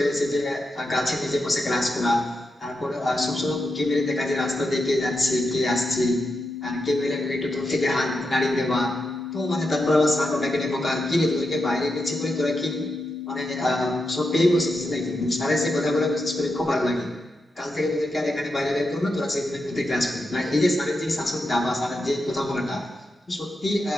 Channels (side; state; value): both; normal; correlation 0.86